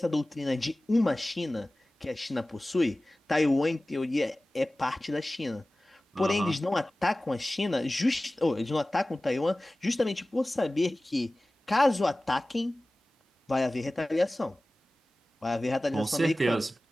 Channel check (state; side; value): normal; both; correlation 0.97